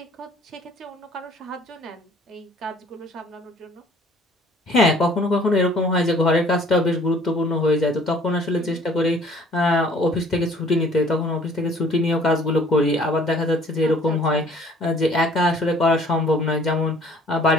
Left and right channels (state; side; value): normal; both; correlation 0.55